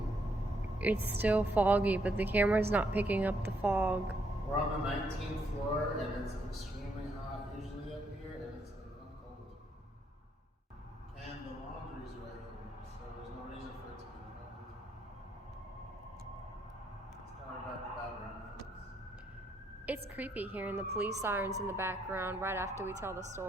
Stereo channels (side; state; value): both; normal; correlation 0.74